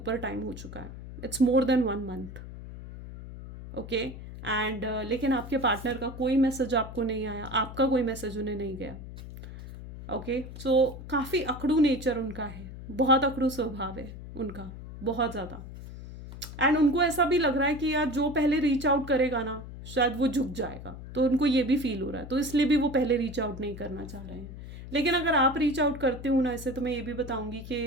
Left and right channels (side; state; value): left; noise; hum, 12 dB below the sound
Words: टाइम हो चुका है। It's more than 1 month, okay. And लेकिन आपके पार्टनर का कोई मैसेज आपको नहीं आया, आपका कोई मैसेज उन्हें नहीं गया, ओके। सो काफ़ी अकड़ू नेचर उनका है, बहुत अकड़ू स्वभाव है उनका, बहुत ज़्यादा। एंड उनको ऐसा भी लग रहा है कि यार जो पहले रीच आउट करेगा ना शायद वो झुक जाएगा, तो उनको ये भी फील हो रहा है, तो इसलिए भी वो पहले रीच आउट नहीं करना चाह रहे हैं। लेकिन अगर आप रीच आउट करते हो ना ऐसे, तो मैं ये भी बताऊंगी